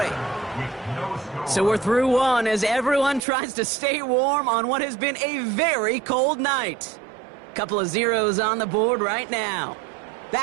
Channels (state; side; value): drops out; left; at 3.2 s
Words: So we're through one as everyone tries to stay warm on what has been a very cold night. Couple of zeros on the board right now.